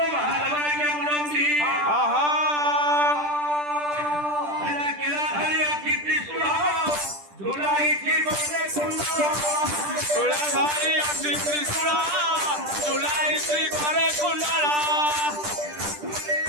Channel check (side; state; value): left; late; 10 ms